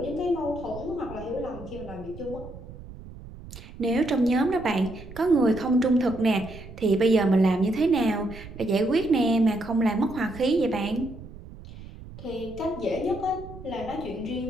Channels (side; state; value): right; noise; rumble, 15 dB below the sound